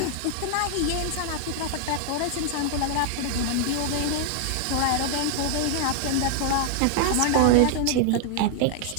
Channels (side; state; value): both; different; correlation 0.00